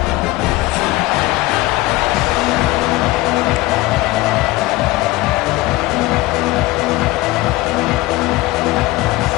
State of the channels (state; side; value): quieter; right; 19.4 dB